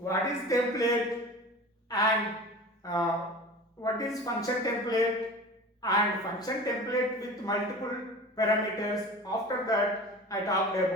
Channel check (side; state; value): both; normal; correlation 0.37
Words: is template and what is function template and function template with multiple parameters. After that I talked